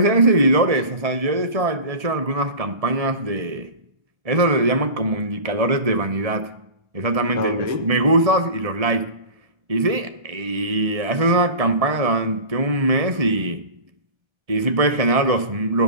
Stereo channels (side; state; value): left; late; 1.7 ms